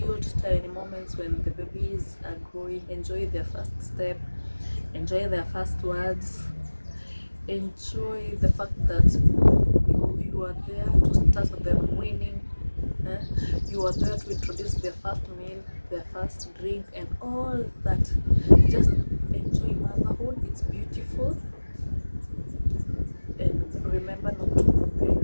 tiny moments when the babies are growing? Enjoy their first step, enjoy their first words, enjoy the fact that you are there to start them winning. You are there to introduce their first meal, their first drink, and all that. Just enjoy motherhood. It's beautiful. And remember not to compare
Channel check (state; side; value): inverted; both; correlation -1.00